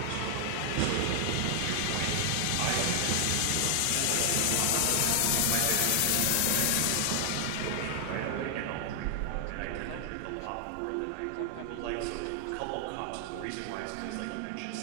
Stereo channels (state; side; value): different; both; correlation 0.00